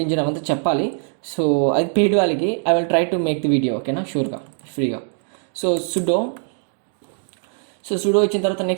ఇంజిన్ అవంతా చెప్పాలి. సో అది పెయిడ్ వాళ్ళకి. I will try to make the video, ఓకేనా, షూర్గా ఫ్రీగా. సో సుడో ఇచ్చిన తర్వాత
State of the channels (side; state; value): left; silent; 65 dB below the other